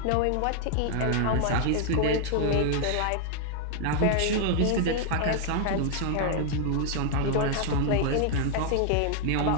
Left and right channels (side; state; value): both; different; correlation 0.00